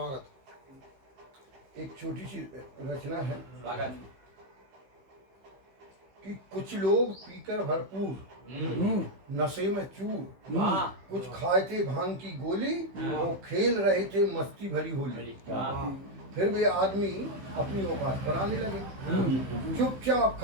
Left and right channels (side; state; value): left; late; 15 ms